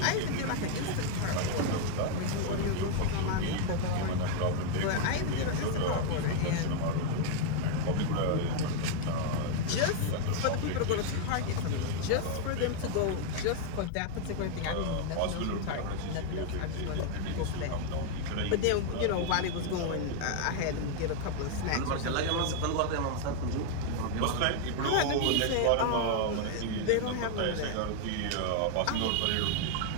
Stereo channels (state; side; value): different; both; correlation 0.00